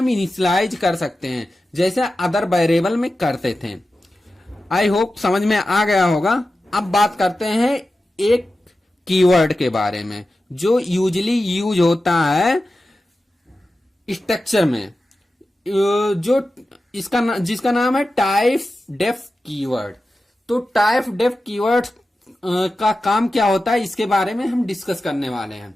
इनिशियलाइज कर सकते हैं जैसे अदर वेरिएबल में करते थे। आई होप समझ में आ गया होगा। अब बात करते हैं एक कीवर्ड के बारे में जो यूजली यूज होता है स्ट्रक्चर में, जो जिसका नाम है टाइप डेफ कीवर्ड। तो टाइप डेफ कीवर्ड का काम क्या होता है इसके बारे में हम डिस्कस करने वाले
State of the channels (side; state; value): both; normal; correlation 0.93